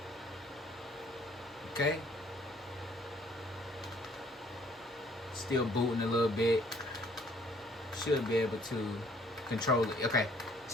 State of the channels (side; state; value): both; normal; correlation 0.61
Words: Okay. Still booting a little bit. Should be able to control it. Okay.